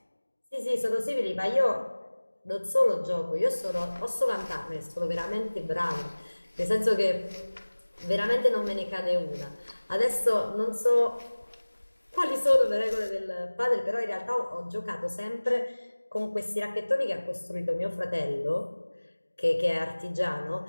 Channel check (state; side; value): inverted; both; correlation -1.00